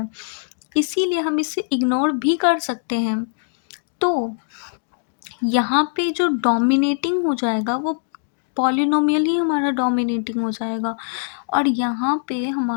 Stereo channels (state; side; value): silent; right; digital silence